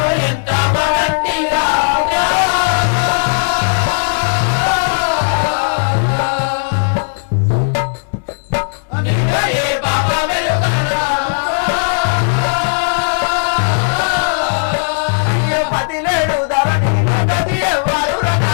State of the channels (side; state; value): right; silent; digital silence